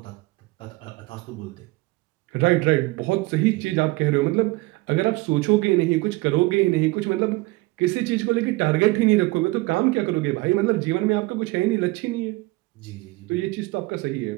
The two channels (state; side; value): quieter; left; 22.1 dB